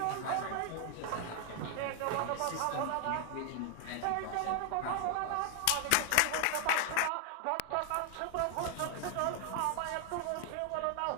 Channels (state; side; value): different; both; correlation 0.00